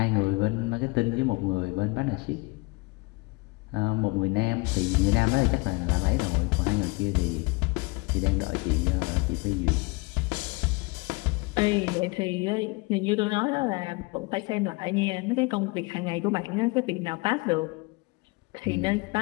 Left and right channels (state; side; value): quieter; right; 26.3 dB